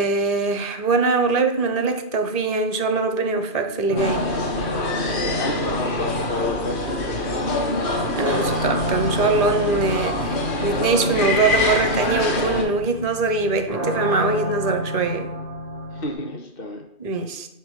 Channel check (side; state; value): right; late; 2.4 ms